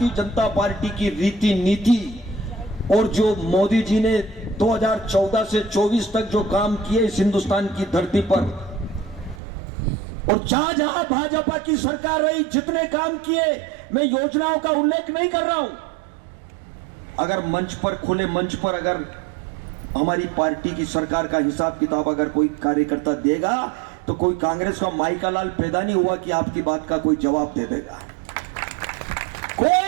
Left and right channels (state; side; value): drops out; left; at 9.4 s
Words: जनता पार्टी की रीति नीति और जो मोदी जी ने 2014 से 24 तक जो काम किए इस हिंदुस्तान की धरती पर, और जहां जहां भाजपा की सरकार रही जितने काम किए, मैं योजनाओं का उल्लेख नहीं कर रहा हूं। अगर मंच पर, खुले मंच पर अगर हमारी पार्टी की सरकार का हिसाब किताब अगर कोई कार्यकर्ता देगा तो कोई कांग्रेस का माइका लाल पैदा नहीं हुआ कि आपकी बात का कोई जवाब दे देगा।